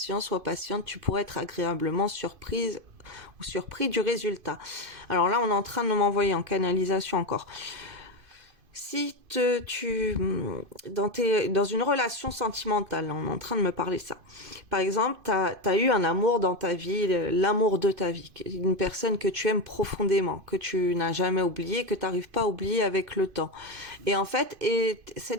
sois patiente. Tu pourrais être agréablement surprise ou surpris du résultat. Alors là, on est en train de m'envoyer en canalisation encore. Si dans une relation sentimentale, on est en train de me parler de ça. Par exemple, t'as eu un amour dans ta vie, l'amour de ta vie, une personne que tu aimes profondément, que tu n'as jamais oublié, que t'arrives pas à oublier avec le temps. Et en fait,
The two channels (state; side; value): late; left; 2.5 ms